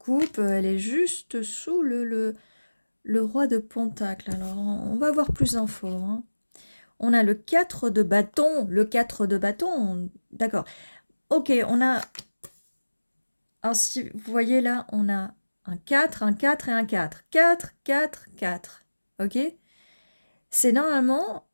Elle est juste sous le roi de Pentacle. Alors, on va voir plus d'infos, hein. On a le 4 de bâton. Le 4 de bâton, d'accord. Ok, on a... Alors, si vous voyez là, on a un 4 et un 4. 4, 4, 4. Ok? C'est normalement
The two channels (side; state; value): both; inverted; correlation -1.00